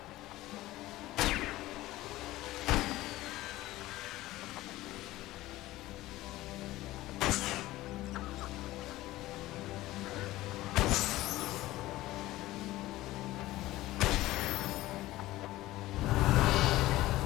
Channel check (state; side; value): quieter; right; 17.0 dB